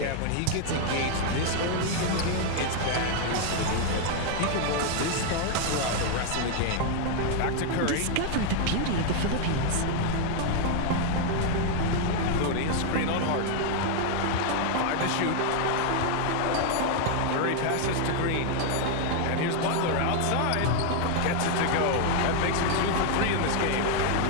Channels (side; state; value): both; different; correlation 0.00